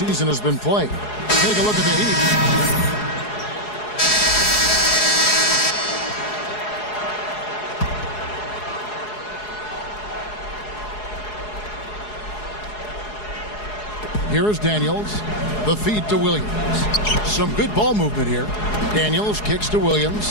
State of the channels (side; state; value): right; late; 4.8 ms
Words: has been played. Take a look at the Heat. Here is Daniels. The feed to Williams. Some good ball movement here. Daniels kicks to